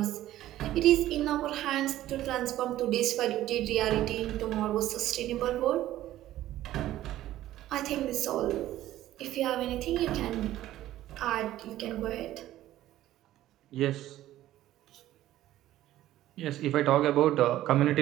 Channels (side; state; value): left; quieter; 14.0 dB